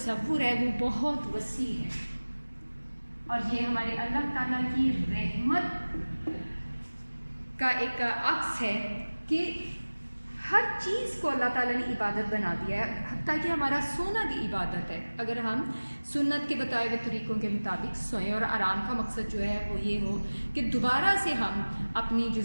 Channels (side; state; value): both; inverted; correlation -1.00